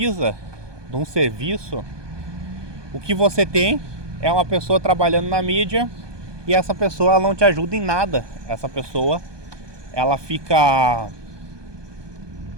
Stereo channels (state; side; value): late; left; 1.2 ms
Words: de um serviço, o que você tem é uma pessoa trabalhando na mídia, e essa pessoa, ela não te ajuda em nada. Essa pessoa, ela fica